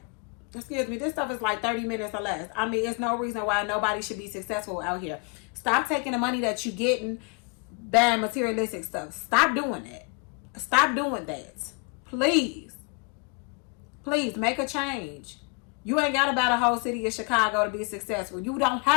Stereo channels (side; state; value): right; quieter; 32.7 dB